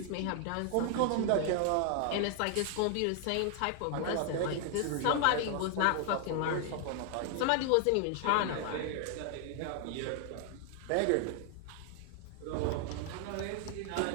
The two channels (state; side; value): different; both; correlation 0.00